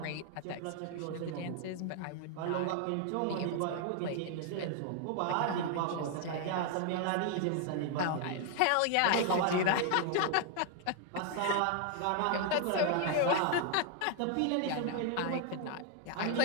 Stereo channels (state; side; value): different; both; correlation 0.00